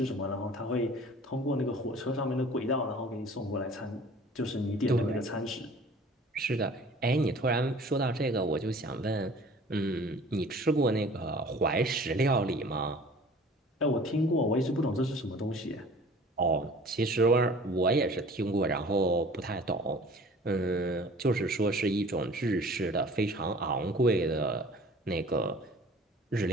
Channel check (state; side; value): normal; both; correlation 0.47